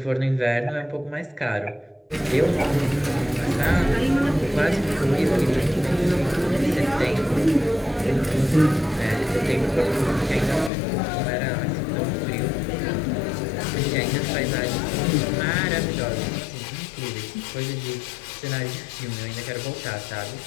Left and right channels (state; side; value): drops out; right; at 10.7 s